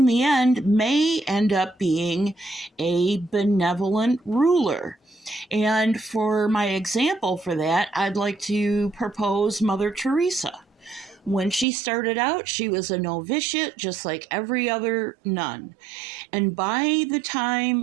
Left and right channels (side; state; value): left; drops out; at 11.7 s